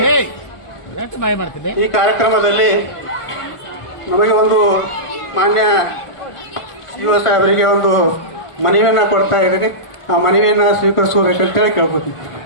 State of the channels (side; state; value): right; late; 1.5 ms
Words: ಈ ಕಾರ್ಯಕ್ರಮದಲ್ಲಿ ನಮಗೆ ಒಂದು ಮಾನ್ಯ ಯುವ ಸಾಹೇಬರಿಗೆ ಒಂದು ಮನವಿಯನ್ನು ಕೊಡ್ತಾ ಇದ್ದೀನಿ. ಆ ಮನವಿಯನ್ನು ಸ್ವೀಕರಿಸಬೇಕಂತೇಳಿ ಕೇಳ್ಕೊತೀನಿ.